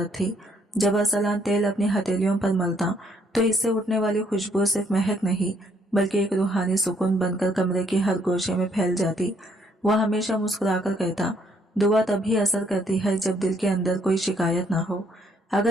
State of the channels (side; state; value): both; normal; correlation 0.68